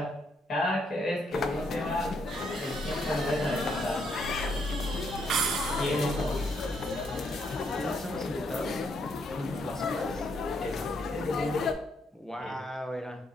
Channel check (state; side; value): normal; both; correlation 0.74